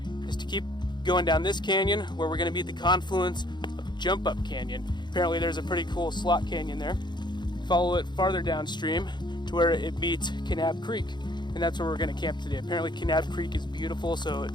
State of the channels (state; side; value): late; right; 0.21 ms